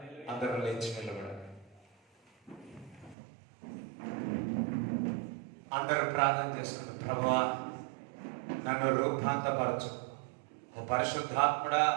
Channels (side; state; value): left; drops out; at 3.2 s